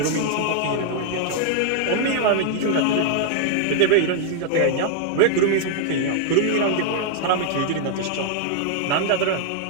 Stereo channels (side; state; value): both; different; correlation 0.00